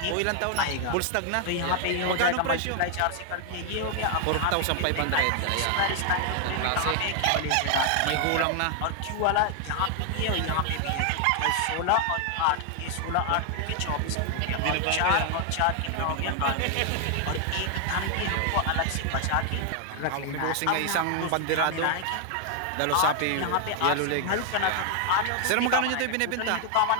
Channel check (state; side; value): different; both; correlation 0.00